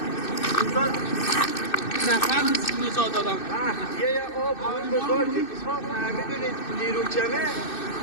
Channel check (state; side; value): late; right; 2.6 ms